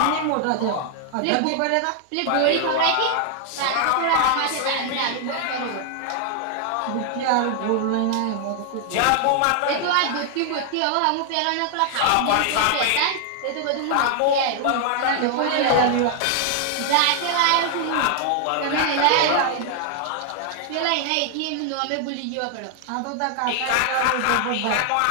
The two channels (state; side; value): different; both; correlation 0.00